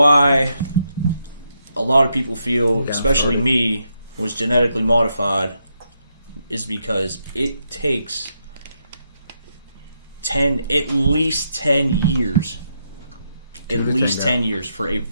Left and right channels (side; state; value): both; inverted; correlation -0.80